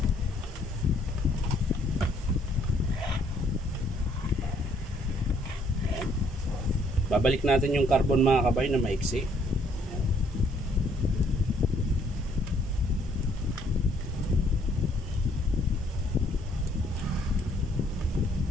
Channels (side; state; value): both; normal; correlation 0.65